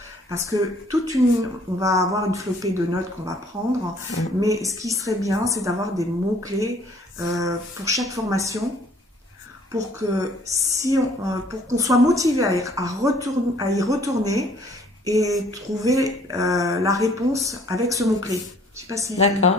parce que on va avoir une flopée de notes qu'on va prendre, mais ce qui serait bien, c'est d'avoir des mots-clés pour chaque formation, pour qu'on soit motivé à y retourner et trouver la réponse avec ce mot-clé. Je ne sais pas si ça te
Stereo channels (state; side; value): normal; both; correlation 0.58